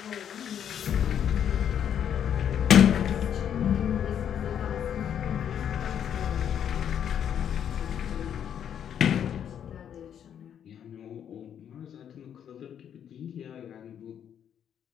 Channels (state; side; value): quieter; right; 9.0 dB